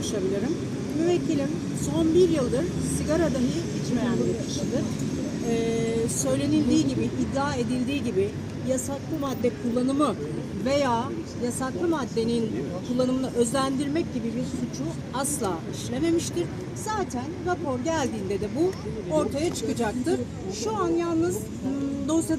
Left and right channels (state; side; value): identical; both; correlation 1.00